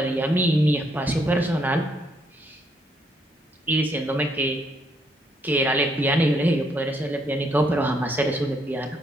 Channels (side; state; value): both; normal; correlation 0.73